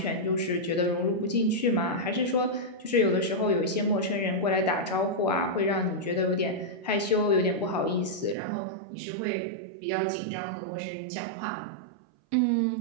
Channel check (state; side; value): drops out; left; at 8.3 s